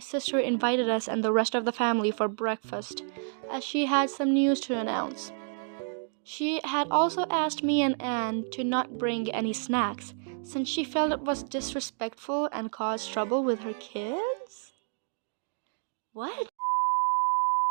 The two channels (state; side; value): silent; left; 58 dB below the other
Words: invited us and the rest of the family for breakfast, as she had some news to announce. She had also asked me and Anne to not bring any snacks, since she felt it was disrespectful and caused trouble with her kids? What?